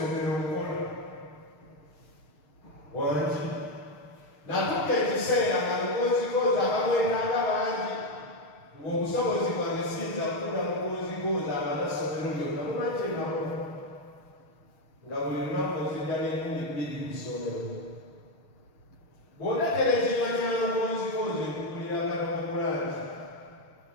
okukola wangi natuka ekiseera nga lukozikozi abamwetanga bangi ng'obusobozi bwange siyinza kukula mukozikozi abanasomero lyonna lumakyengakola nga buli lunaku nzijja n'2,000 ku ssomero bw'otatera ekinywa ky'amakozikozi ekukulira katomakulangi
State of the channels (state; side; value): late; right; 6.5 ms